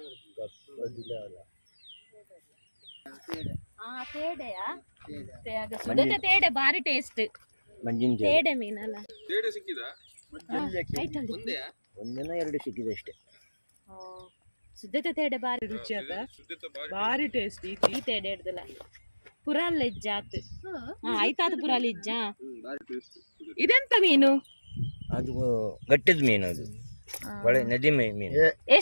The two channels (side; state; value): both; inverted; correlation -1.00